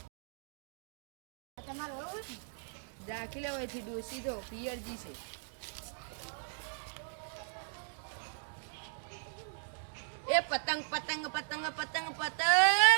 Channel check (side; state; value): left; silent; digital silence